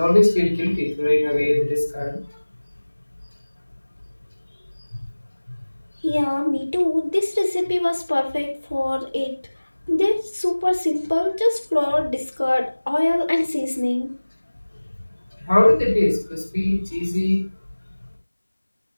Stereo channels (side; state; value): both; inverted; correlation -1.00